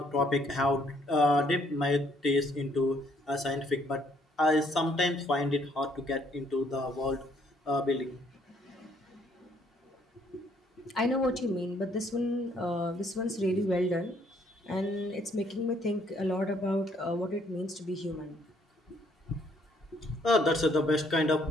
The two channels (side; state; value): both; normal; correlation 0.67